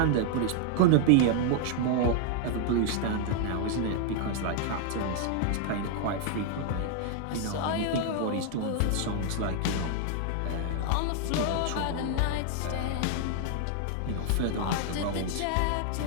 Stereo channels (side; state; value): both; different; correlation 0.00